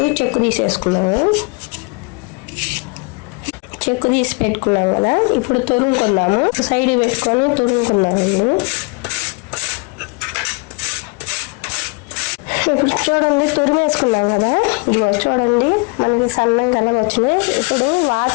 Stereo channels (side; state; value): right; quieter; 31.0 dB